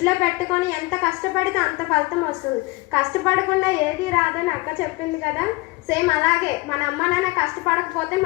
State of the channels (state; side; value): quieter; right; 23.7 dB